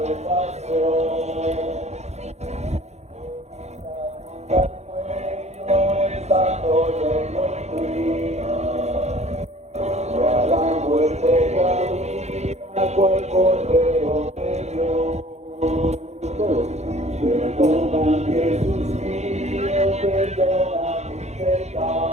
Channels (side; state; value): left; late; 0.32 ms